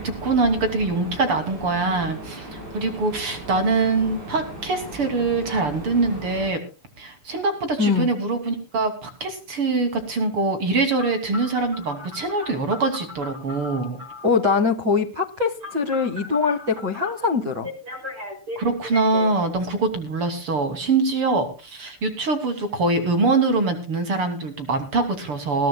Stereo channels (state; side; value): late; left; 6.9 ms